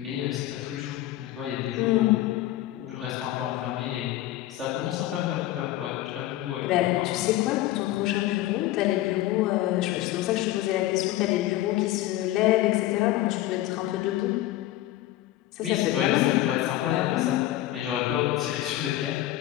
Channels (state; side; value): quieter; right; 15.2 dB